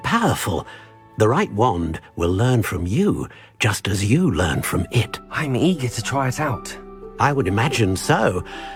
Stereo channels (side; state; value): both; identical; correlation 1.00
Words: The right wand will learn from you, just as you learn from it. I'm eager to try it out. I would imagine so.